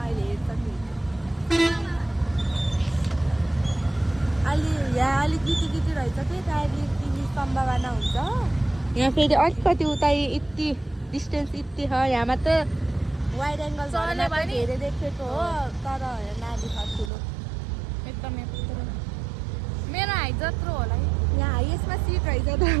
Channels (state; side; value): drops out; left; at 17.1 s